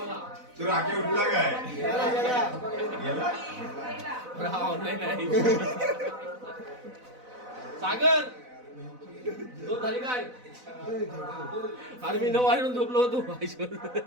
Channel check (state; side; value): late; left; 4.0 ms